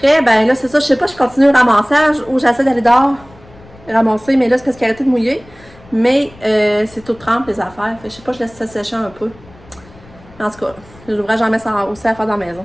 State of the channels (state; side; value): noise; left; rumble, 24 dB below the sound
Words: ben là, c'est ça, je sais pas, je continue le ramassage ou j'essaie d'aller dehors ramasser, mais là, c'est parce qu'il a arrêté de mouiller. Mais c'est tout trempe, les affaires. Fait que je sais pas, je laisse ça sécher un peu. En tout cas, l'ouvrage, j'en mets ça aussi à faire dans la maison.